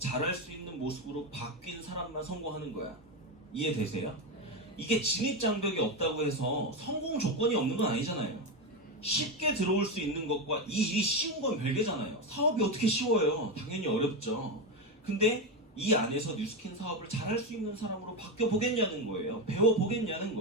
수 있는 모습으로 바뀐 사람만 성공하는 거야. 이해되세요? 이게 진입장벽이 없다고 해서 성공 조건이 없는 건 아니잖아요. 쉽게 들어올 수 있는 것과 이 일이 쉬운 건 별개잖아요. 사업이 어떻게 쉬워요? 당연히 어렵죠. 근데 이 안에서 뉴스킨 사업을 잘할 수 있는 사람으로 바뀌어 보겠냐는 거예요. 배워 보겠냐는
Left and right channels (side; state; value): both; normal; correlation 0.13